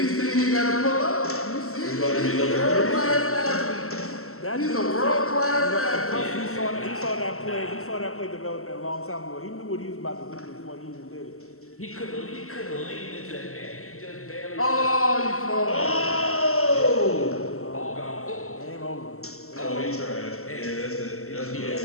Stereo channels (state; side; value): late; right; 0.63 ms